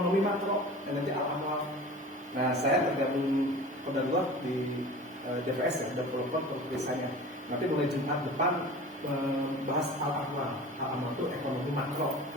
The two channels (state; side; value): normal; both; correlation 0.38